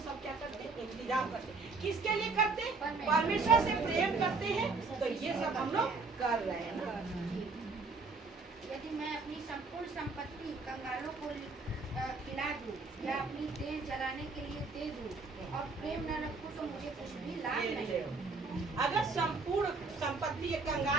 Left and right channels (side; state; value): left; quieter; 4.0 dB